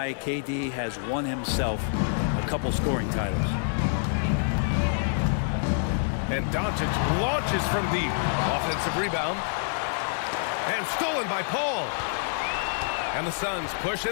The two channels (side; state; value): right; silent; 60 dB below the other